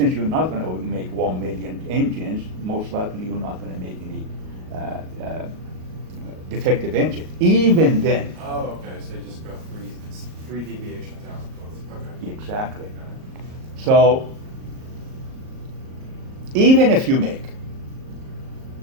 you're not going to make 1 million engines, most likely you're not going to make any defective engine. Even then. Oh, okay, so you just go three deviations out. Okay. Exactly. Got it. So, even if you make,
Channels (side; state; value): left; late; 38 ms